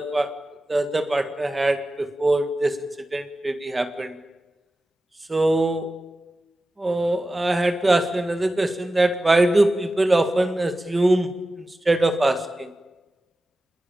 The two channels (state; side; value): normal; both; correlation 0.94